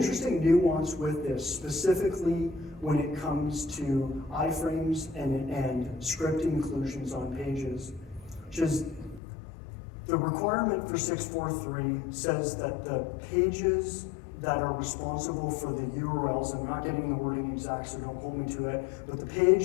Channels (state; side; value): drops out; right; at 9.2 s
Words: nuance with this, specifically when it comes to iframes and script inclusions on pages, which is the requirement for 643 says that the pages that are responsible for the URLs, I'm not getting the wording exact, so don't hold me to it, but the